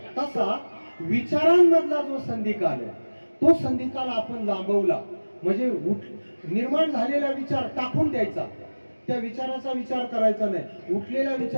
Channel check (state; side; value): inverted; both; correlation -1.00